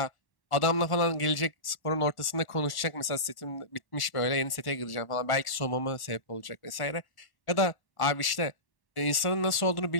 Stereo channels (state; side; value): late; right; 1.1 ms